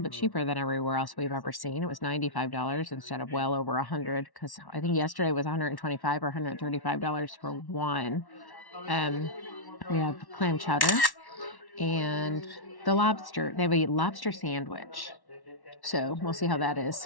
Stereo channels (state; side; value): late; right; 1.1 ms